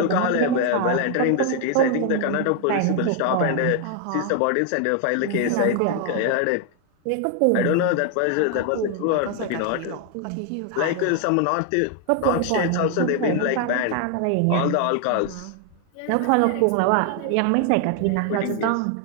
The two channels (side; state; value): both; different; correlation 0.00